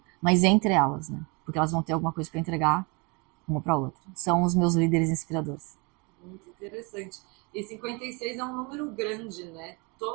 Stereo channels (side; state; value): left; quieter; 29.8 dB